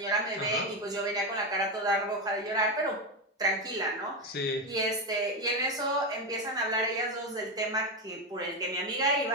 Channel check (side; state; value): both; normal; correlation 0.12